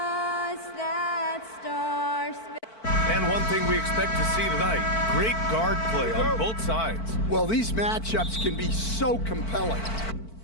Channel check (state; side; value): late; right; 4.5 ms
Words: that star And one thing we expect to see tonight, great guard play on both sides. Well, these matchups can be so compelling.